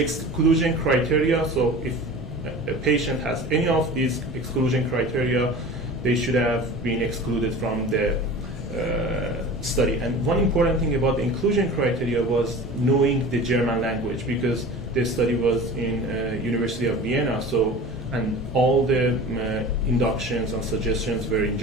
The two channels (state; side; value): normal; both; correlation 0.37